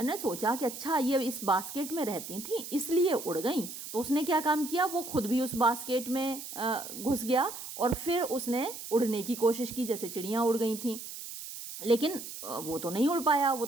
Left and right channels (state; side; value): noise; right; hiss, 10 dB below the sound